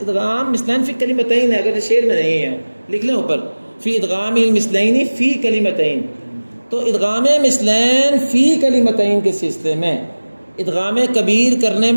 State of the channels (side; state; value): both; inverted; correlation -1.00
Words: ادغام مثلین فی کلمتین ہے. اگر شعر میں نہیں ہے لکھ لیں اوپر، فی ادغام المثلین فی کلمتین. تو ادغام مثلین فی کلمتین کے سلسلے میں ادغام کبیر کرنے